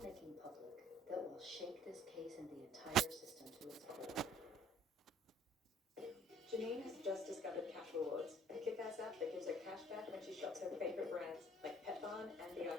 making public that will shake this case and the entire system to its core? Janine has just discovered Cash Rewards, a kick-ass app that gives her cash back when she shops her favorite brands, like Pet Barn and The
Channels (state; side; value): normal; both; correlation 0.56